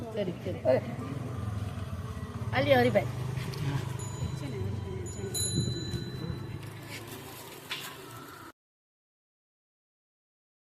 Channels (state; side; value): identical; both; correlation 1.00